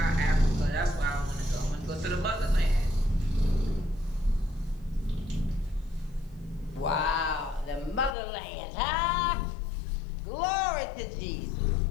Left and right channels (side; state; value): right; drops out; at 8.2 s